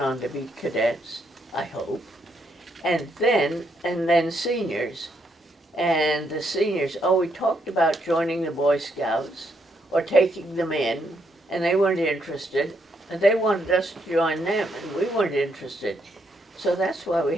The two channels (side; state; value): both; normal; correlation 0.76